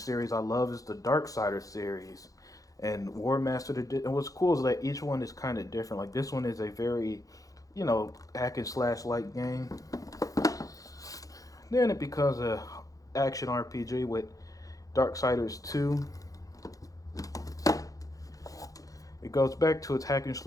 I love is the Darksiders series and War Master. And what's cool is that each one is kind of different. Like this one is a very, you know, hack and slash like game. Then it becomes a action RPG with Darksiders 2. It goes back to its hack and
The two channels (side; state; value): right; late; 0.17 ms